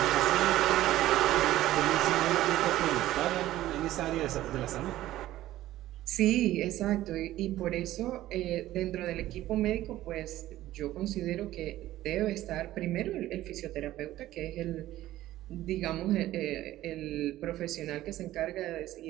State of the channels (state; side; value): quieter; left; 14.8 dB